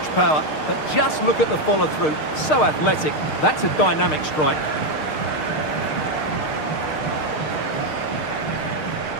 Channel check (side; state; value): right; late; 6.5 ms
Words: power, but just look at the follow-through. So athletic. That's a dynamic strike.